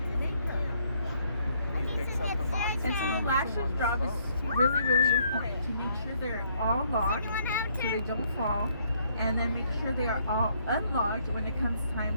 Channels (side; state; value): both; inverted; correlation -0.68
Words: And so the lasher's job is really, really important to make sure they're all locked so they don't fall, and then make sure they are all unlocked when it comes time